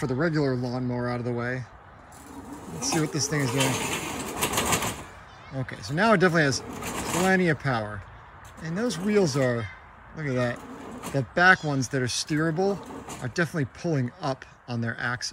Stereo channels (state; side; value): identical; both; correlation 1.00